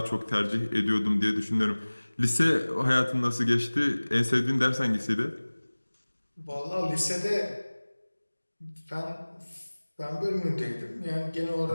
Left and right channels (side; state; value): both; inverted; correlation -1.00